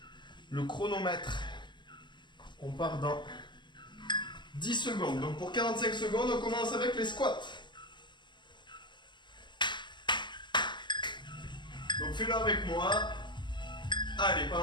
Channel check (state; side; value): late; right; 0.22 ms